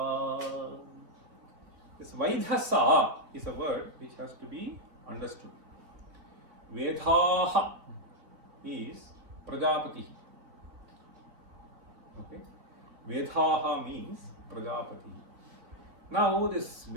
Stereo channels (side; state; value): left; late; 3.3 ms